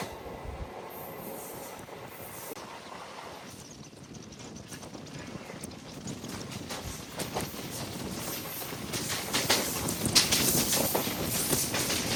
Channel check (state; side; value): identical; both; correlation 1.00